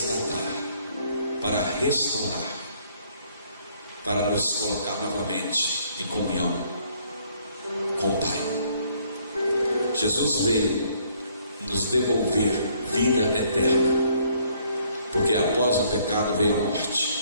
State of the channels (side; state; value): both; inverted; correlation -0.65